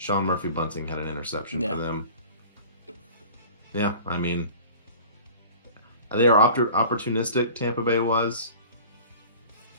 Murphy-Bunting had an interception for them. Yeah, I mean, they are opportunistic, Tampa Bay was.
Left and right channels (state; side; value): inverted; both; correlation -0.43